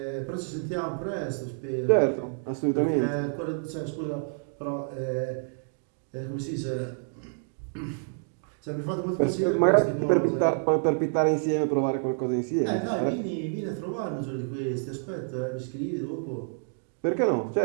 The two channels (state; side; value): silent; left; 59 dB below the other